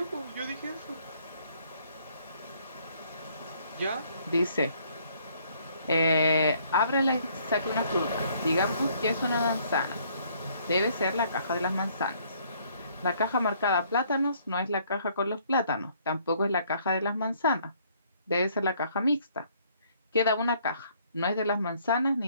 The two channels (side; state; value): both; inverted; correlation -0.64